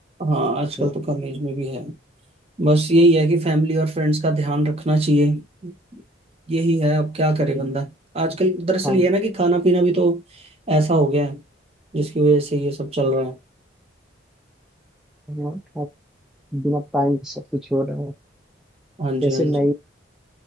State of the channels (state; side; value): normal; both; correlation 0.57